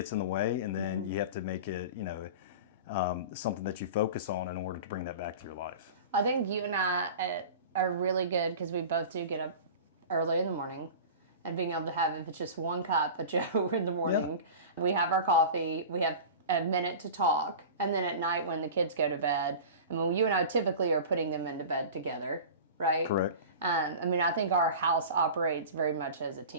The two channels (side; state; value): both; inverted; correlation -0.34